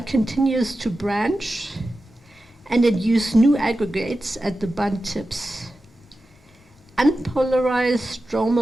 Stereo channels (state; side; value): normal; both; correlation 0.92